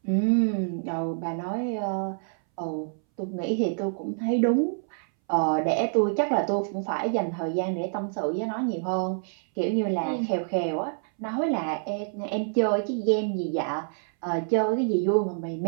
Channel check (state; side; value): silent; left; 60 dB below the other